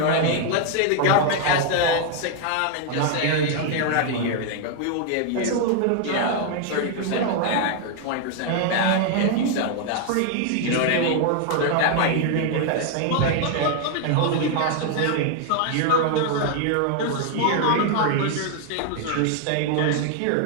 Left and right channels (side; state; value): both; different; correlation 0.00